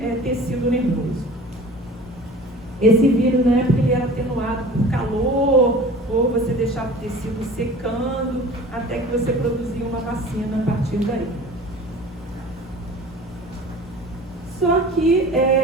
tecido nervoso. Esse vírus, na época, ele era atenuado por calor, ou você deixava o tecido secando, até que você produzia uma vacina a partir daí. Só que,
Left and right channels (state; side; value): normal; both; correlation 0.42